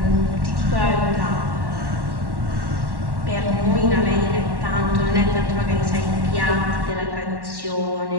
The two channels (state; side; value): late; left; 1.1 ms